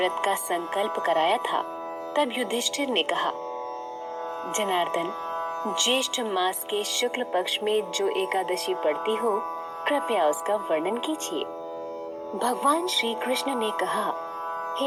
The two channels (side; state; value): both; identical; correlation 1.00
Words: का संकल्प कराया था, तब युधिष्ठिर ने कहा, जनार्दन, ज्येष्ठ मास के शुक्ल पक्ष में जो एकादशी पड़ती हो, कृपया उसका वर्णन कीजिए। भगवान श्री कृष्ण ने कहा,